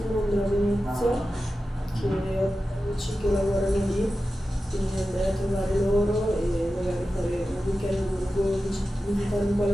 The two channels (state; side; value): normal; both; correlation 0.93